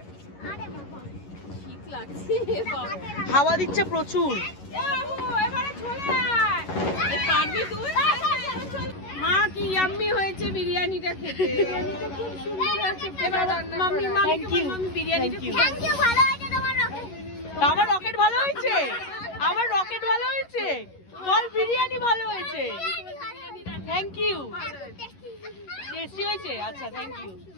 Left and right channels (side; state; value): right; late; 11 ms